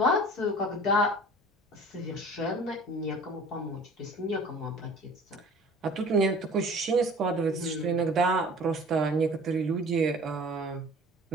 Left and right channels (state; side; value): normal; both; correlation 0.45